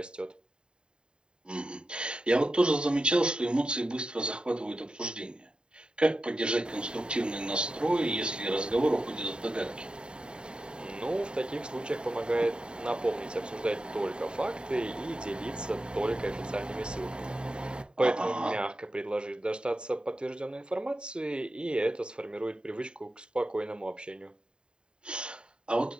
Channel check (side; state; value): left; late; 0.050 ms